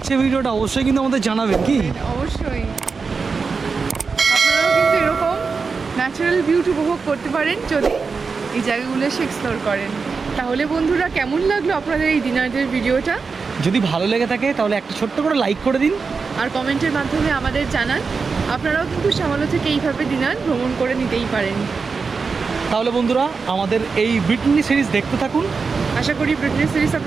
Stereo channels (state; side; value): quieter; left; 4.9 dB